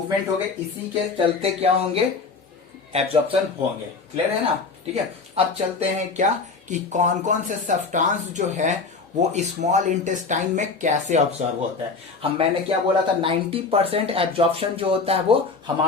हो गए, इसी के चलते क्या होंगे, एब्जॉर्प्शन होंगे, क्लियर है ना, ठीक है। अब चलते हैं क्या कि कौन कौन से सब्सटेंस जो है वो स्मॉल इंटेस्टाइन में कैसे ऑब्जर्व होता है। मैंने क्या बोला था, 90% एब्जॉर्प्शन जो होता है वो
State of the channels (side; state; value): right; quieter; 4.3 dB